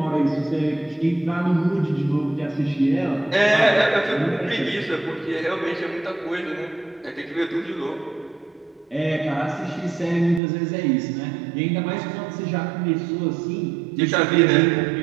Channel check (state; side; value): drops out; left; at 10.4 s